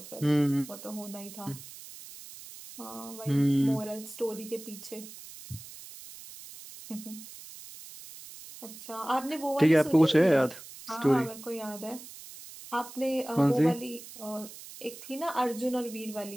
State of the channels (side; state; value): right; noise; hiss, 15 dB below the sound